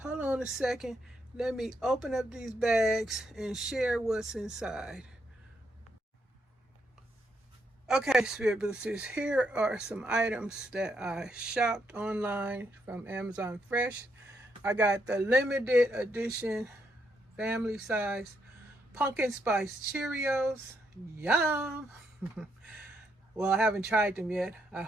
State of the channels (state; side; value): normal; both; correlation 0.77